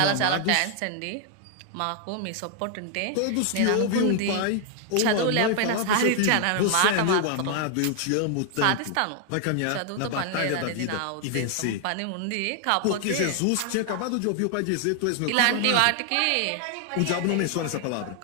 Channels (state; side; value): different; both; correlation 0.00